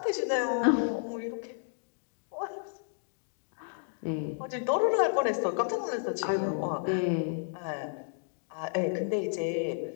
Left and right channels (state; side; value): silent; right; digital silence